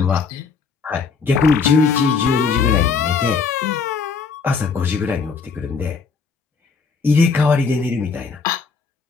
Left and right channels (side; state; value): right; quieter; 5.2 dB